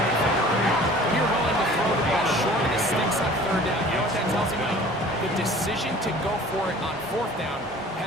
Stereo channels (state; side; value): normal; both; correlation 0.47